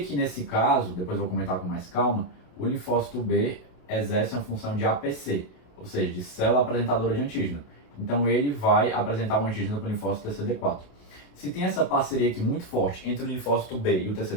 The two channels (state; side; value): late; right; 28 ms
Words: nesse caso, depois eu vou comentar com mais calma, o linfócito B exerce uma função de APC, ou seja, de célula apresentadora de antígeno. Então ele vai apresentar um antígeno para o linfócito TCD4. Se tem essa parceria aqui muito forte entre o linfócito B e o